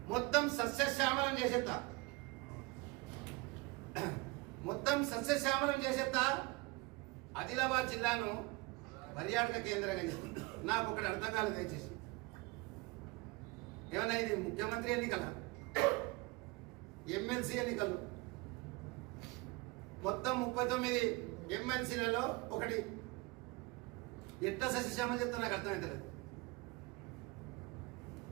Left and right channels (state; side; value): quieter; left; 23.6 dB